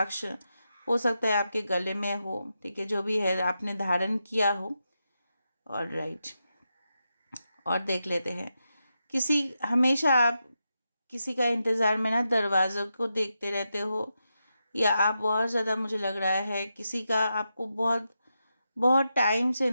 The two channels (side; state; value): both; inverted; correlation -0.87